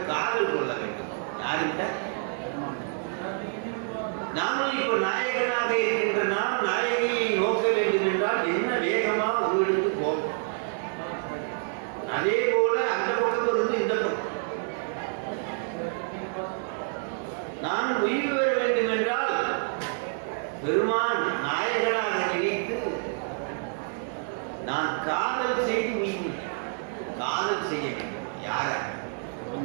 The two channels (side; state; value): left; silent; 59 dB below the other